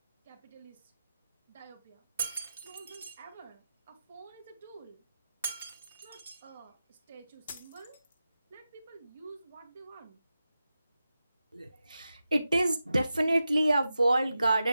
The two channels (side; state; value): both; inverted; correlation -0.92